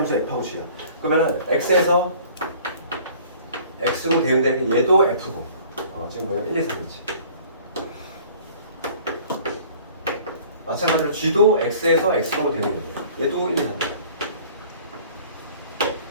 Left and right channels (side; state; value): both; inverted; correlation -0.50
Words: f하고 g야. 그러면은 x에서 x로 대응되는 게 얘도 f고, 지금 뭐냐면 1, 2, 3이지. 마찬가지로 g도 x에서 x로 대응되는 게 얘도 1, 2, 3이야.